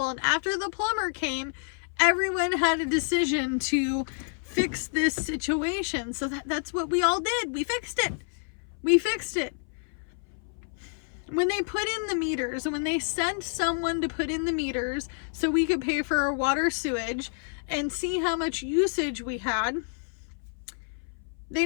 and after the plumber came, everyone had a decision to fix this situation. So that's what we all did. We fixed it. When they put in the meters, when they sent someone to put in the meters so we could pay for our water, sewage, and see how much usage we had, they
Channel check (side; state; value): right; silent; 58 dB below the other